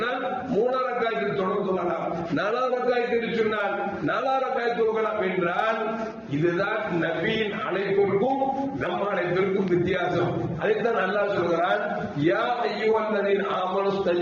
3வது ரக்காத்தில் தொழலாம், 4வது ரக்காத் என்று சொன்னால் 4வது ரக்காத் தொழலாம் என்றால் இதுதான் நபியின் அழைப்பிற்கும் நம்ம அழைப்பிற்கும் வித்தியாசம். அதைத்தான் அல்லாஹ் சொல்கிறான், யா அய்யுஹல்லதீன ஆமனு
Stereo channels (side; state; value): both; identical; correlation 1.00